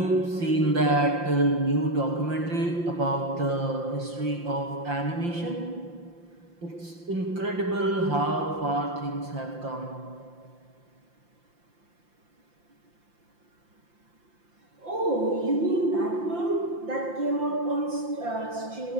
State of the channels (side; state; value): left; late; 5.8 ms